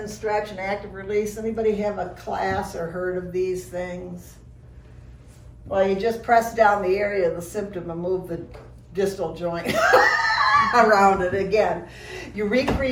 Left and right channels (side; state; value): both; identical; correlation 1.00